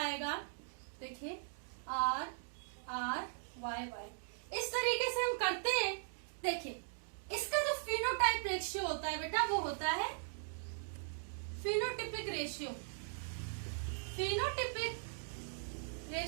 देखिए आर आर वाई वाई। इस तरीके से हम करते हैं। देखिए इसका जो फिनोटाइप रेशियो होता है बेटा, वो होता है फिनोटिपिक रेशियो। फिनोटिपिक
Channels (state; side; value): silent; left; digital silence